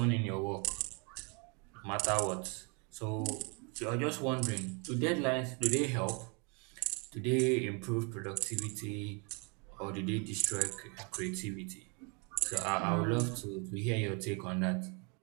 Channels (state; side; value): quieter; left; 33.9 dB